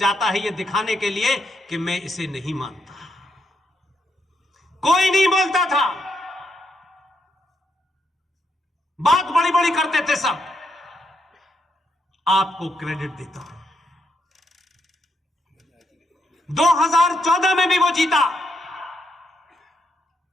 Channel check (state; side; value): normal; both; correlation 0.79